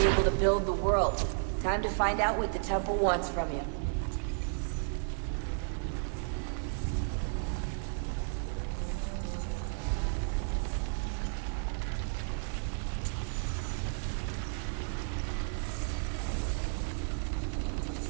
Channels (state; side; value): silent; left; digital silence